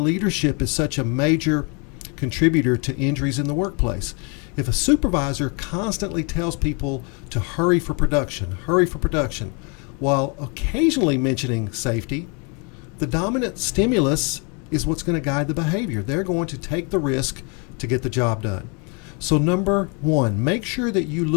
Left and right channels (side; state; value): right; quieter; 34.2 dB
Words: is such a major contributor to injuries in the workplace. If a supervisor constantly tells people to hurry for production, while occasionally mentioning safety, the dominant stimulus is what's going to guide the behavior. They're going to take the risk to get the job done. So number one, make sure that you